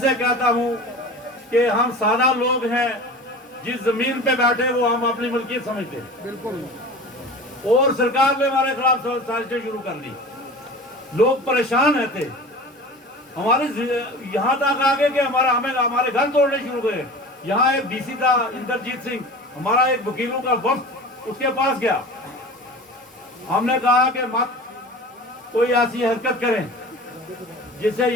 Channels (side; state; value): both; normal; correlation 0.37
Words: कहता हूँ कि हम सादा लोग हैं, जिस जमीन पे बैठे वो हम अपनी मलकियत समझते हैं। बिल्कुल। और सरकार ने हमारे खिलाफ साजिशें शुरू कर दी। लोग परेशान रहते, हमारे यहाँ तक आ गए कि हमारे घर तोड़ने शुरू हुए। यहाँ एक DC था इंद्रजीत सिंह, हमारा एक वकीलों का वक्त उसके पास गया। हमने कहा कि मत कोई ऐसी हरकत करें जिससे